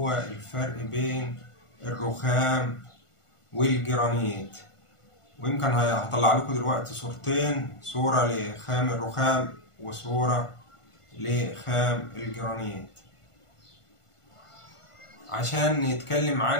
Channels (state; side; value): late; right; 1.5 ms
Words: الفرق بين الرخام والجرانيت. ويمكن هطلع لكم دلوقتي صورتين، صورة لخام الرخام وصورة لخام الجرانيت، عشان نتكلم